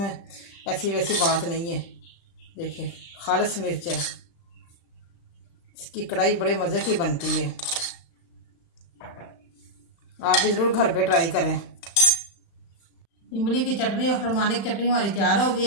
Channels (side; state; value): right; late; 35 ms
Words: ऐसी वैसी बात नहीं है। देखिए खालिश मिर्च है, इसकी कढ़ाई बड़े मजे की बनती है। आप भी जरूर घर पे ट्राई करें। इमली की चटनी और खुरमानी की चटनी हमारी तैयार हो गई